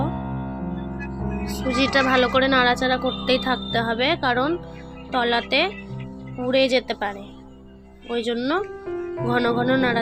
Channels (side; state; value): both; identical; correlation 1.00